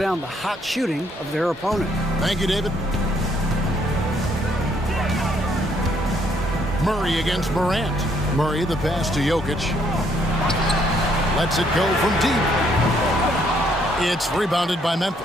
the hot shooting of their opponent. Thank you, David. Murray against Morant. Murray, the pass to Jokic. Lets it go from deep. It's rebounded by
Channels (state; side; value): normal; both; correlation 0.69